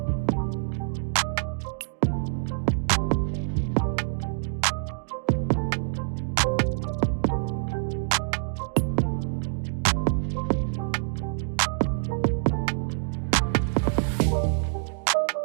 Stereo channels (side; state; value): left; silent; digital silence